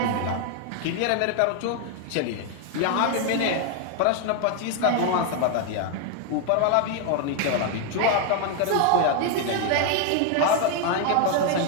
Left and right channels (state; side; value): different; both; correlation 0.01